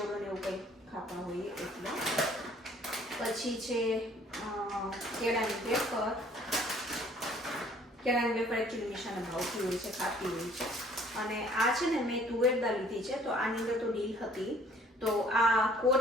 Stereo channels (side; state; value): both; normal; correlation 0.57